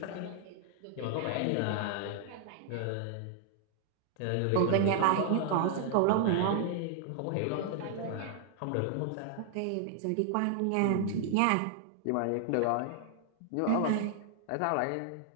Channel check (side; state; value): both; different; correlation 0.00